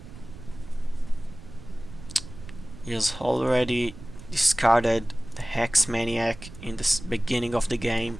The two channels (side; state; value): right; noise; rumble, 15 dB below the sound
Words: He has already discarded the Hex Maniac in the beginning of the